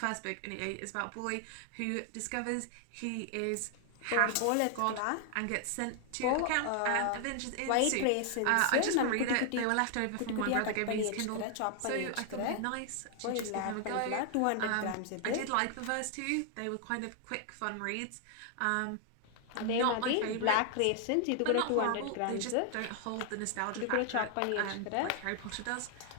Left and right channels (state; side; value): different; both; correlation 0.00